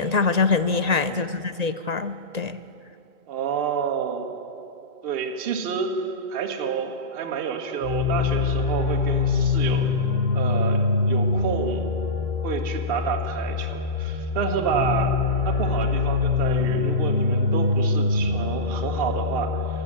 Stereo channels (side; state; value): left; late; 1.9 ms